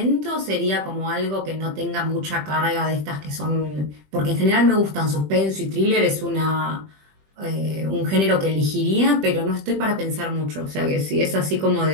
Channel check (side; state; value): left; late; 20 ms